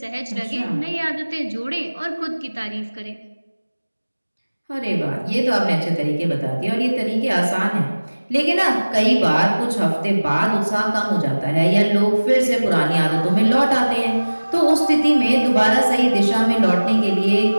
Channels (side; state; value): both; inverted; correlation -1.00